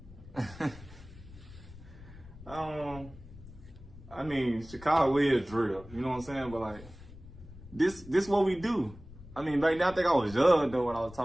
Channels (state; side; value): noise; left; rumble, 17 dB below the sound